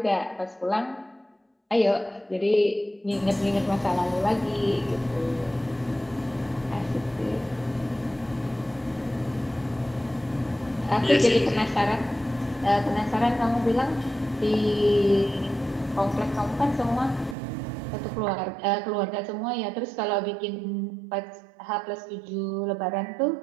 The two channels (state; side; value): drops out; left; at 17.4 s